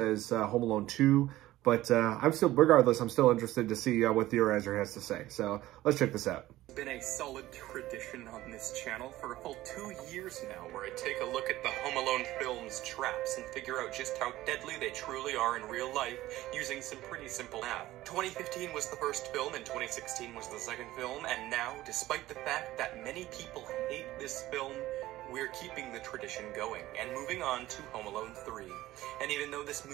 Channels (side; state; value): left; quieter; 16.0 dB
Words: Home Alone 2, but regardless, I'm still interested to see what Theorizer has to say. So let's check this out. It's been a solid tradition on this channel for a full 2 years now, where I take a look at the Home Alone films' traps and figure out just how deadly they truly are in real life using some pretty simple math. 2015 was the first film and 2016 was the second film, and now, despite the fact that many people hate this film, we're keeping the tradition going and moving on to Home Alone 3. And even though this